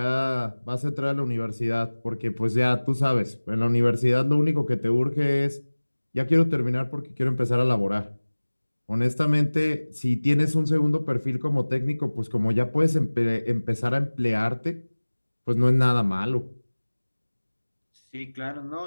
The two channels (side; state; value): both; inverted; correlation -1.00